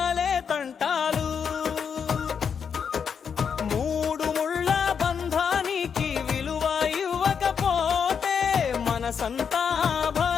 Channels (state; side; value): quieter; right; 6.8 dB